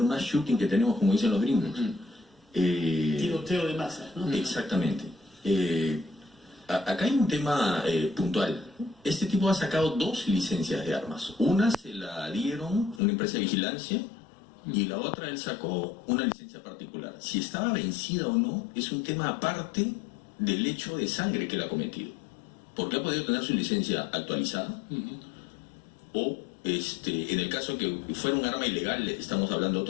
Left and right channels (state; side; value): drops out; right; at 13.0 s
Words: mass shooting que tenemos, como dicen los gringos. Tiroteo de masa, ¿no? Exactamente. Acá hay un tema puntual. Este tipo ha sacado 2 licencias de armas. Una se la dieron una empresa de vigilancia y la otra él sacó una licencia particular. Si estaba vencida o no es un tema aparte del hecho de sangre que él ha cometido. Porque ha podido tener su licencia actualizada o en el caso que fuera un arma ilegal estamos hablando de